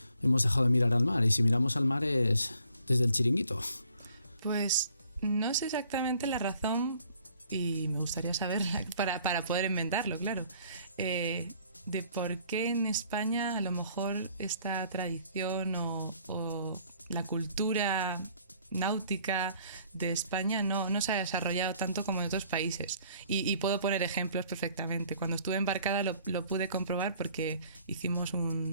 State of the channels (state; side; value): inverted; both; correlation -0.60